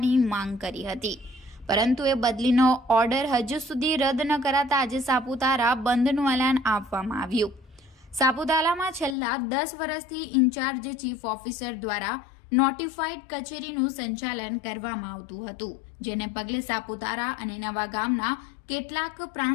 માંગ કરી હતી, પરંતુ એ બદલીનો ઓર્ડર હજુ સુધી રદ ન કરાતા આજે સાપુતારા બંધનું એલાન આપવામાં આવ્યું। સાપુતારામાં છેલ્લા 10 વર્ષથી ઇન્ચાર્જ ચીફ ઓફિસર દ્વારા નોટિફાઈડ કચેરીનું સંચાલન કરવામાં આવતું હતું, જેને પગલે સાપુતારા અને નવાગામના કેટલાક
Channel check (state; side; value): drops out; right; at 9.2 s